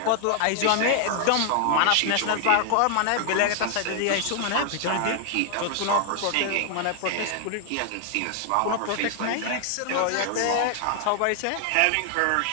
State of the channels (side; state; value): both; different; correlation 0.00